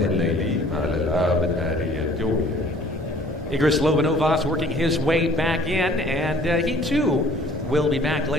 الليلي مع الألعاب النارية الجوية. Igris Lobanovas working his way back in, and he too will be back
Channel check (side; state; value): both; normal; correlation 0.53